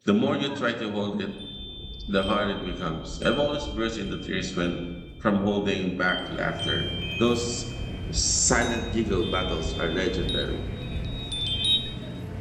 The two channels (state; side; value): identical; both; correlation 1.00